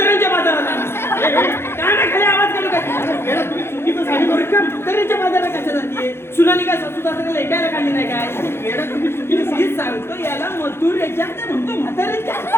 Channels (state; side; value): late; right; 0.12 ms